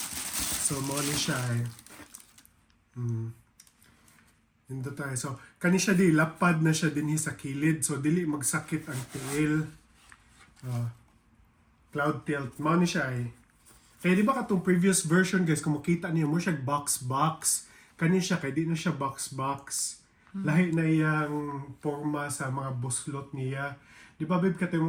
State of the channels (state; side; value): identical; both; correlation 1.00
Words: So mo ni siya eh. Indo tayo. So, kani siya di, lapad na siya din sa kilid. So, dili magsakit ang tiil. Cloud tilt. Mao ni siya eh. Kaya di ba katong previous version guys, kung makita niyo mo siya box-box. Kani siya, kaya di na siya box-box. Lahi na iyang forma sa mga buslot niya. Di ba, babe,